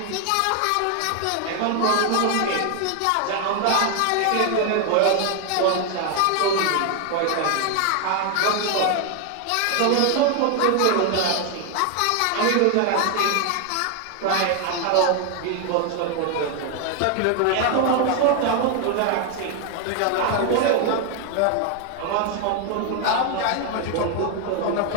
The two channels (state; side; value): different; both; correlation 0.01